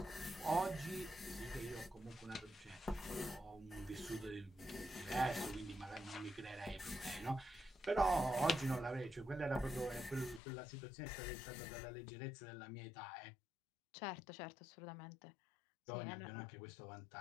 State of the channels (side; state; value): right; drops out; at 10.4 s